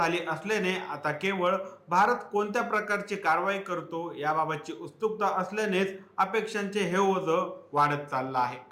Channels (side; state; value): both; identical; correlation 1.00